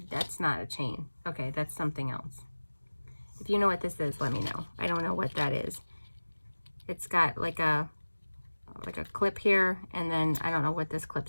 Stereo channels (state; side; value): inverted; both; correlation -1.00